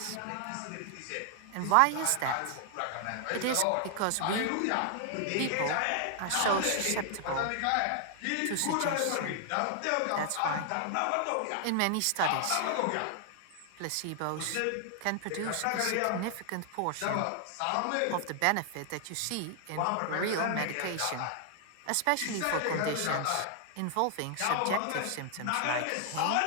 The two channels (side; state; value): both; different; correlation 0.00